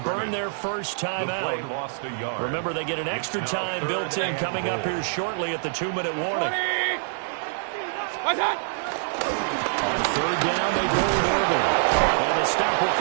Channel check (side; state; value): left; silent; digital silence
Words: burn their first time out. Remember, they get an extra time built in coming up here shortly at the 2-minute warning. What's up? On 3rd down, they go with Irvin. And the stop will